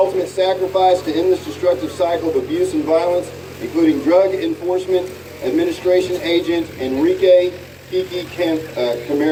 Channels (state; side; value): identical; both; correlation 1.00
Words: sacrifice to end this destructive cycle of abuse and violence, including Drug Enforcement Administration agent Enrique Kiki